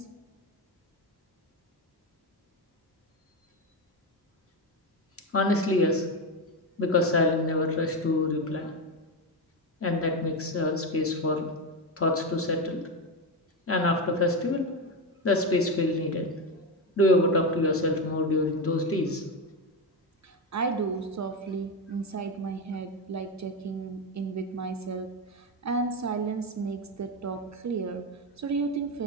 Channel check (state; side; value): normal; both; correlation 0.13